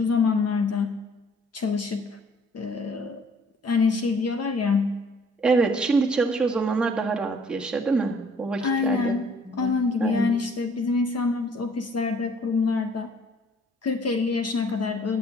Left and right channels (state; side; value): normal; both; correlation 0.58